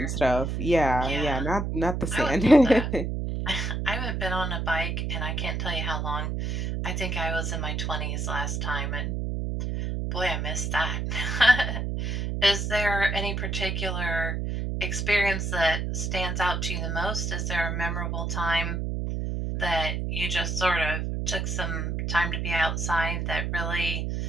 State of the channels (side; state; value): right; noise; hum, 1 dB below the sound